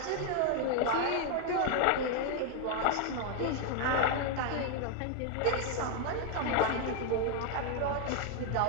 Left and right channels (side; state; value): both; different; correlation 0.00